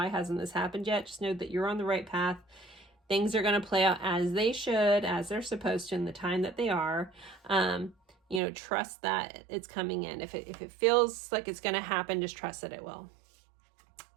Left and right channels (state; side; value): drops out; left; at 8.4 s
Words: hasn't this happened yet, just know that you're on the right path. Things are going to play out as they should, as they're supposed to in the time that they are. You know, trust that it's coming in. If it feels like it's going to happen, just trust that it will.